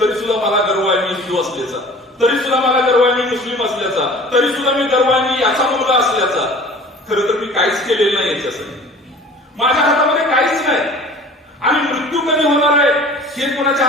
सुद्धा मला गर्व आहे मी हिंदू असल्याचा, तरी सुद्धा मला गर्व आहे मी मुस्लिम असल्याचा, तरी सुद्धा मी गर्व आहे मी याचा मुलगा असल्याचा. खरं तर मी काहीच केलेलं नाही याच्यासाठी. माझ्या हातामध्ये काहीच नाही. आणि मृत्यू कधी होणार आहे हे कोणाच्या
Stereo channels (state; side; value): normal; both; correlation 0.44